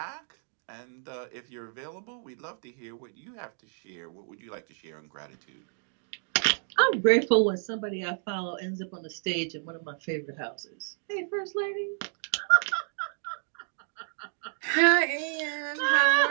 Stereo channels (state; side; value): silent; left; 57 dB below the other